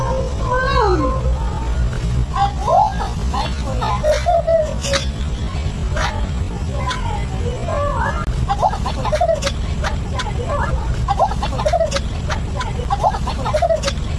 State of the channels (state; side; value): identical; both; correlation 1.00